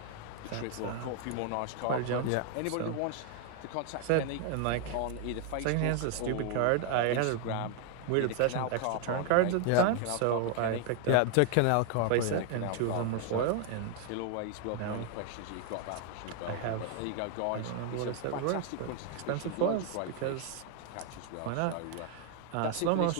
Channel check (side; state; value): both; different; correlation 0.00